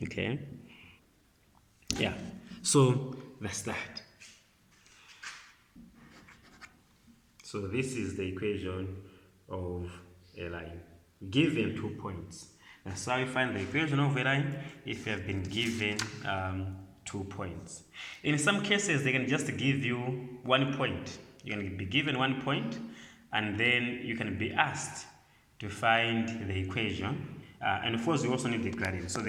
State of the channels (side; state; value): both; identical; correlation 1.00